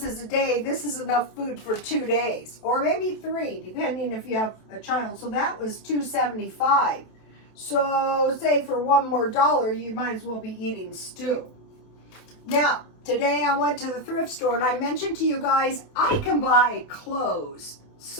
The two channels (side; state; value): right; late; 27 ms